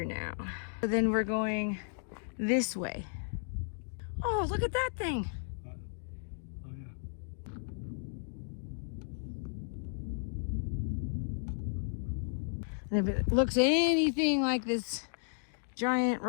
now. So then we're going this way. Oh, look at that thing. Oh, yeah. And if it looks anything like this giant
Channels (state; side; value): silent; right; digital silence